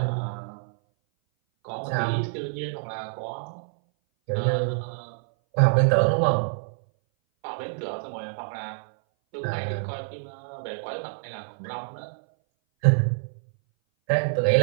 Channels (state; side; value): silent; left; 58 dB below the other